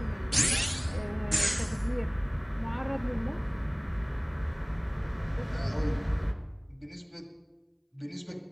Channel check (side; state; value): both; identical; correlation 1.00